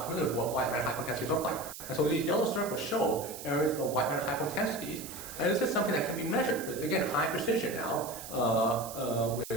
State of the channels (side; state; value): right; noise; hiss, 12 dB below the sound